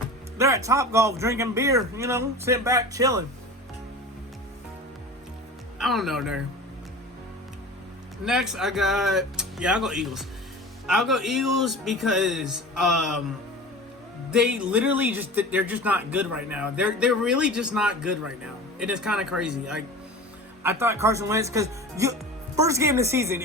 They're at Topgolf drinking beer, you know, sitting back chilling. I don't know there. Next, I'll go Eagles. I'll go Eagles because they literally they're just not good right now. They're really just not good right now. It is kind of crazy. Like, I thought Carson Wentz, because first game of the season,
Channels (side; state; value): both; normal; correlation 0.35